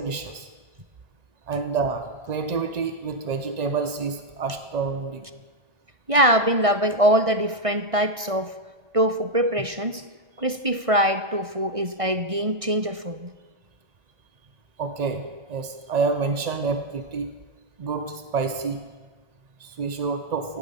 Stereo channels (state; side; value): late; left; 1.6 ms